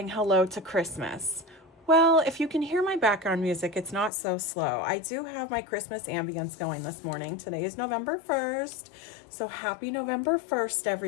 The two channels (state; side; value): drops out; right; at 4.1 s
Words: hello to Christmas. Well, if you can hear my background music, it's not so slow. I do have my Christmas ambience going this morning. Today is November 1st, so happy November 1st,